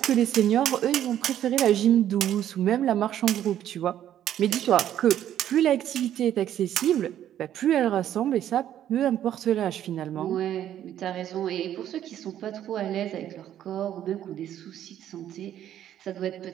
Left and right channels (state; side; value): quieter; left; 11.1 dB